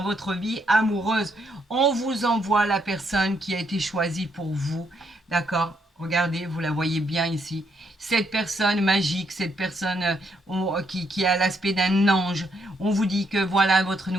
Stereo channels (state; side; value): normal; both; correlation 0.75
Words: votre vie amoureuse. On vous envoie la personne qui a été choisie pour vous. D'accord? Regardez, vous la voyez bien ici. Cette personne magique, cette personne qui a l'aspect d'un ange. On vous dit que voilà votre